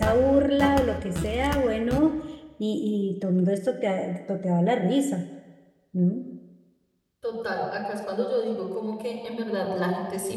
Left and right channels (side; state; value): both; identical; correlation 1.00